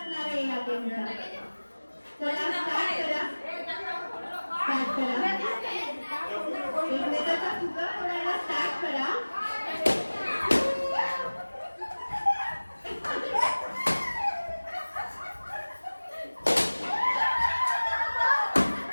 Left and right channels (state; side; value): inverted; both; correlation -1.00